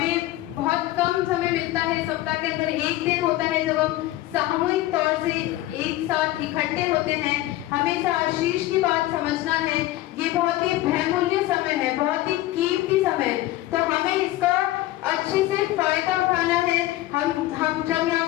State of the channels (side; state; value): right; quieter; 16.1 dB